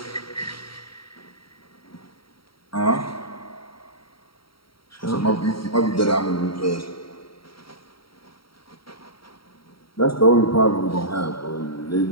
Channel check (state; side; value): late; right; 0.74 ms